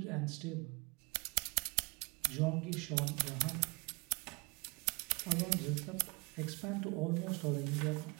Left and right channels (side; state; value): left; quieter; 27.8 dB